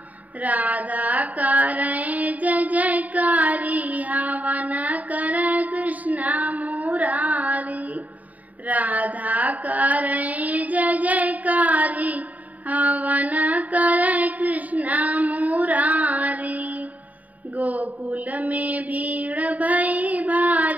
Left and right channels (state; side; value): late; left; 0.073 ms